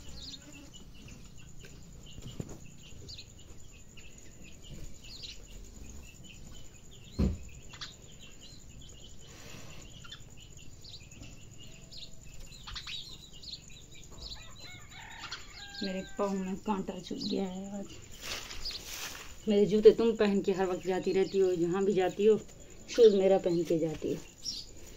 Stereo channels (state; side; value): identical; both; correlation 1.00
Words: मेरे पाँव में कांटा चुभ गया है आज। मेरे जूते तुम पहन के हर वक्त जाती रहती हो, जहाँ भी जाती हो शूज़ मेरा पहन के जाती हो,